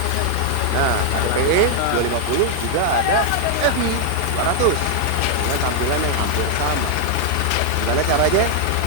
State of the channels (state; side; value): different; both; correlation 0.00